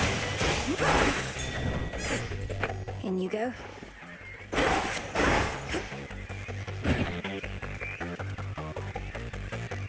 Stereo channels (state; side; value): identical; both; correlation 1.00